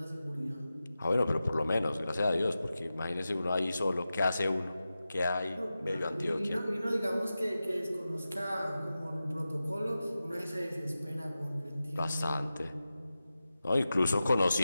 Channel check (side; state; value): both; inverted; correlation -0.93